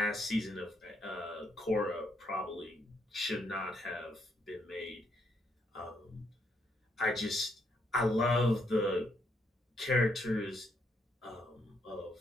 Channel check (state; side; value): normal; both; correlation 0.74